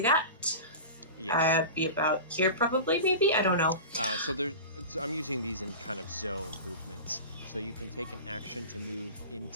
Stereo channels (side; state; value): both; inverted; correlation -0.30